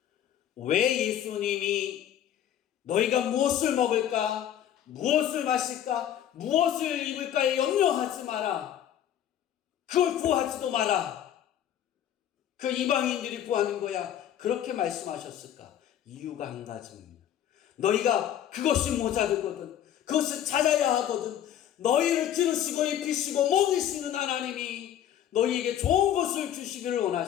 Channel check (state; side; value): quieter; right; 10.7 dB